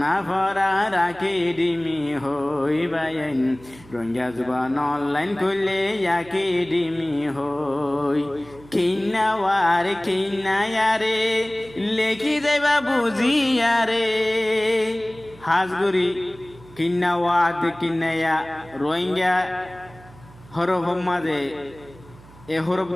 ফরা রাখি ডিমি হই বায়াইন রোহিঙ্গা জুবান অনলাইন কুলি আখি ডিমি হই কিন্না ওয়ারে কিন্না ইয়ারে লেখি যাইবা বুঝিয়ারে হাজগুড়ি কিন্না ওয়াদ কিন্নায়া রোহিঙ্গা হরফ মাঝে এ হরফ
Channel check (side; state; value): right; noise; hum, 23 dB below the sound